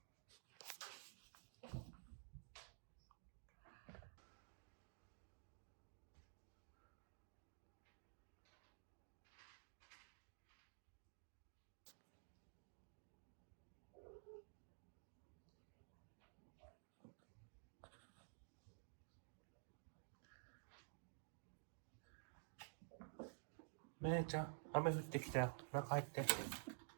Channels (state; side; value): silent; left; digital silence